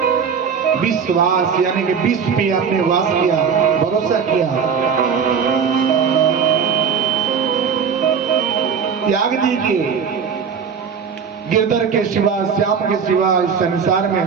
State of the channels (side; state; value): left; quieter; 6.6 dB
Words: विश्वास, यानी कि विश्व पे आपने वास किया, भरोसा किया, त्याग दीजिए। गिरधर के सिवा, श्याम के सिवा इस संसार में